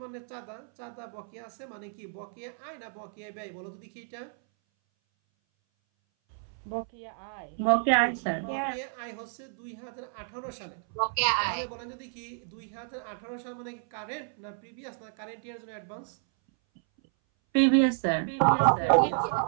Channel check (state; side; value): silent; left; 57 dB below the other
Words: মানে চাঁদা। চাঁদা বকেয়া আছে মানে কি? বকেয়া আয় না বকেয়া ব্যয় বলো তো দেখি? এটা বকেয়া আয়। বকেয়া আয় স্যার। বকেয়া আয় হচ্ছে 2018 সালে। বকেয়া আয়। তাহলে বলেন যদি কি 2018 সাল মানে কি কারেন্ট না প্রিভিয়াস না কারেন্ট ইয়ার জন্য অ্যাডভান্স? Previous sir.